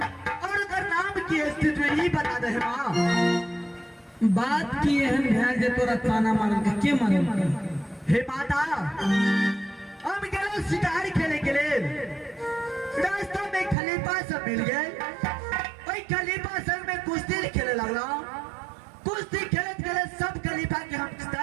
और अगर नाम की है तो ये बता दे माँ। बात की एहन ध्यान जे तोरा ताना मारल का? के मारल का? हे माता, हम गए शिकार खेले के लिए, रास्ता में खलीफा सब मिल गए, वही खलीफा सब में कुश्ती खेले लगला, कुश्ती खेलत खेलत सब खलीफा के हम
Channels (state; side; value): drops out; left; at 13.8 s